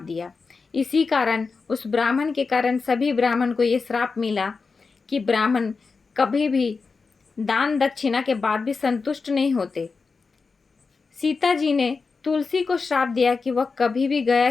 इसी कारण उस ब्राह्मण के कारण सभी ब्राह्मण को ये श्राप मिला कि ब्राह्मण कभी भी दान दक्षिणा के बाद भी संतुष्ट नहीं होते। सीता जी ने तुलसी को श्राप दिया कि वह कभी भी गया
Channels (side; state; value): right; quieter; 4.6 dB